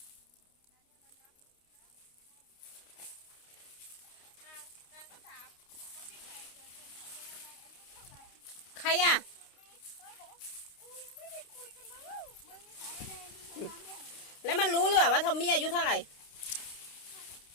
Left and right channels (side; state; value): right; late; 29 ms